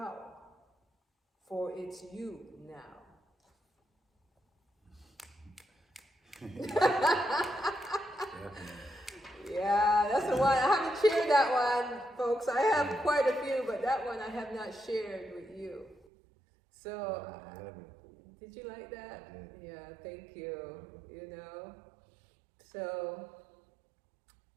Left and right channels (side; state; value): left; drops out; at 16.1 s